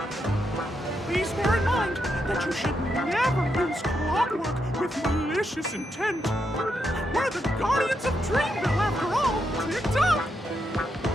Please bear in mind that you should never use clockwork with malicious intent. We're the guardians of Dreamville, after all. Tick-tock!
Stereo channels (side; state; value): both; normal; correlation 0.82